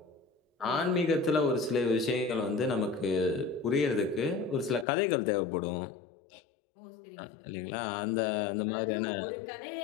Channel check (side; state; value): right; drops out; at 4.9 s